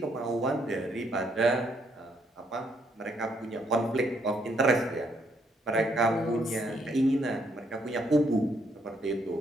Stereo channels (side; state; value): both; normal; correlation 0.71